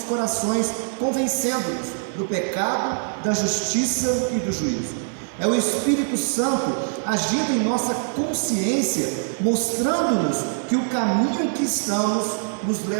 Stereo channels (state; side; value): silent; left; digital silence